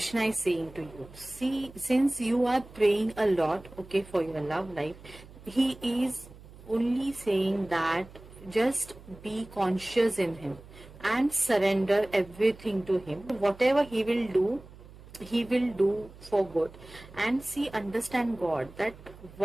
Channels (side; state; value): right; noise; hum, 20 dB below the sound